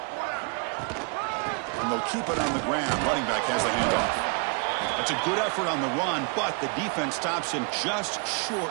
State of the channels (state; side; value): quieter; left; 36.2 dB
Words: And they'll keep it on the ground. Running back has the handoff. That's a good effort on the run, but the defense stops him just